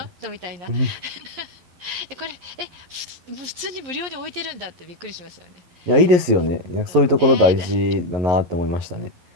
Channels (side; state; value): left; late; 11 ms